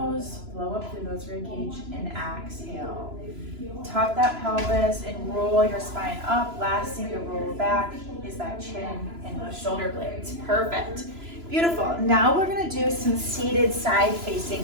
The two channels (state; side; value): late; left; 3.0 ms